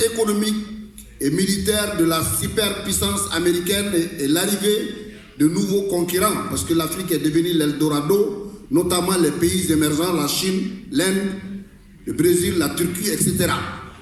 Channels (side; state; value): both; identical; correlation 1.00